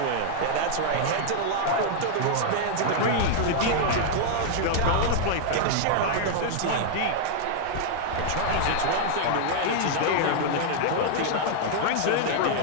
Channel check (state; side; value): different; both; correlation -0.01